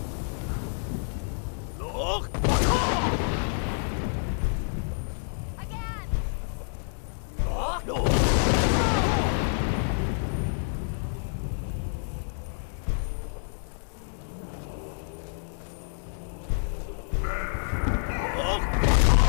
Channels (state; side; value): silent; right; digital silence